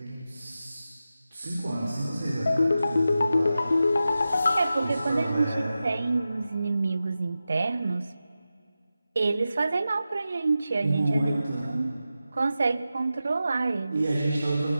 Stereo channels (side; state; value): both; inverted; correlation -0.92